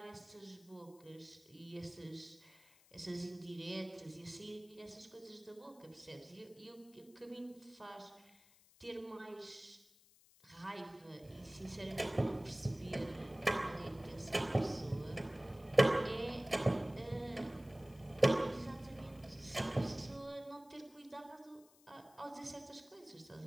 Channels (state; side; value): noise; left; hiss, 27 dB below the sound